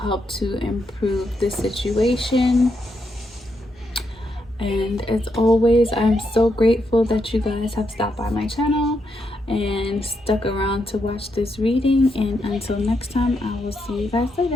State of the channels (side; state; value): both; normal; correlation 0.81